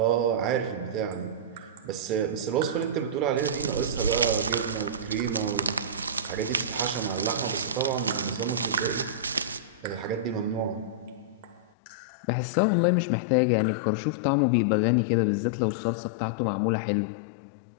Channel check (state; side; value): drops out; right; at 11.7 s